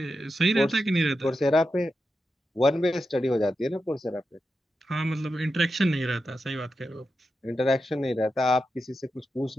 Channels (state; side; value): normal; both; correlation 0.89